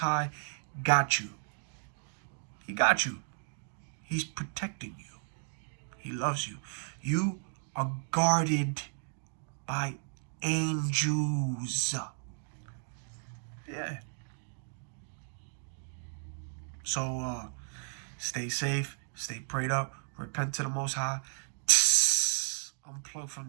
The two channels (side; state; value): left; silent; digital silence